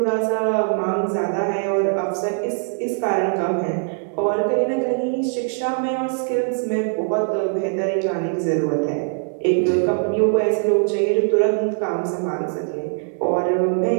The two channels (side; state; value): left; silent; 65 dB below the other